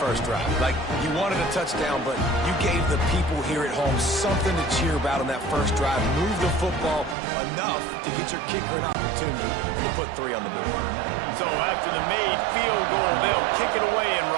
drive. Like, you wanted a touchdown, but you gave the people here at home something to cheer about on that first drive. Move the football enough to get your kicker an opportunity and to put 3 on the board. So after the made field goal, they'll kick it away and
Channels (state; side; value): drops out; left; at 7.2 s